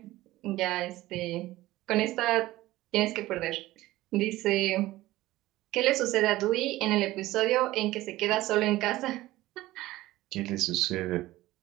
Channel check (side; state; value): left; quieter; 17.1 dB